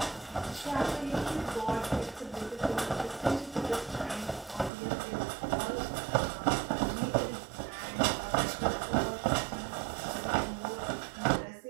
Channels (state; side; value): drops out; left; at 4.7 s